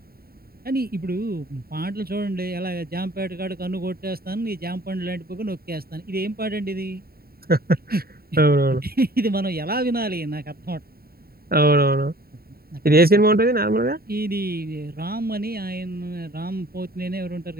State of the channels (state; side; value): late; left; 0.44 ms